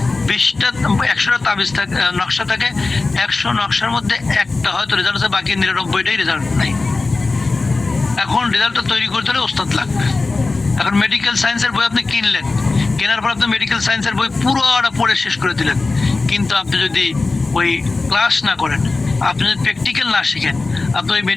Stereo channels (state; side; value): quieter; right; 3.6 dB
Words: 100টা তাবিজ থাকে, নকশা থাকে, 100 নকশার মধ্যে একটা হয়তো রেজাল্ট আছে, বাকি 99টাই রেজাল্ট নাই। এখন রেজাল্টটা তৈরি করতে হলে ওস্তাদ লাগবে। এখন মেডিকেল সায়েন্সের বই আপনি কিনলেন, কেনার পর আপনি মেডিকেল সায়েন্সের বই পুরোটা পড়ে শেষ করে দিলেন, কিন্তু আপনি যদি ওই ক্লাস না করেন, আপনি যদি প্র্যাকটিক্যাল না শিখেন, আপনি ওই